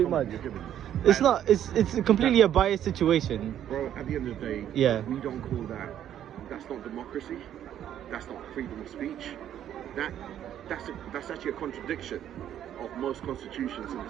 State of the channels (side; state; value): left; quieter; 10.6 dB